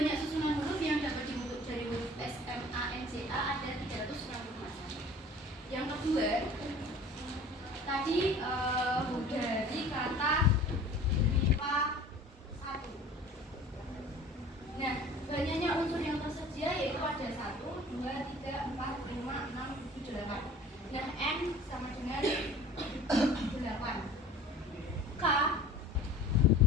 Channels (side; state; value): both; normal; correlation 0.45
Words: susunan huruf yang dapat dibentuk dari huruf S, M, A, N, J, A ada 360 macam. Yang kedua, tadi dari kata MIPA 1. Nah, banyaknya unsur yang tersedia yaitu ada 1, 2, 3, 4, 5, 6, 7, 8. Nah, N sama dengan 8. K